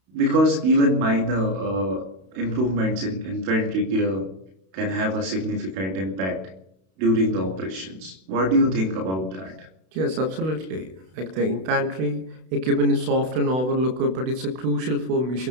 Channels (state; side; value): late; left; 32 ms